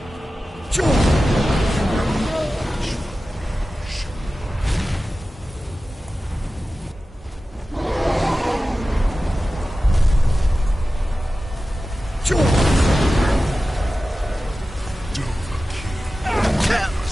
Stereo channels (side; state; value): both; normal; correlation 0.95